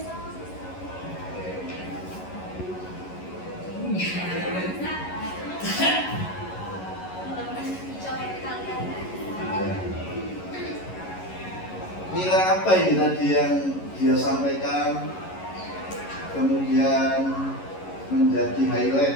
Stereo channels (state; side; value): late; right; 11 ms